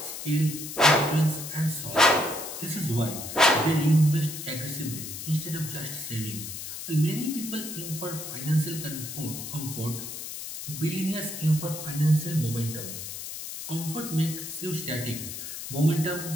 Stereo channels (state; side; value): noise; left; hiss, 8 dB below the sound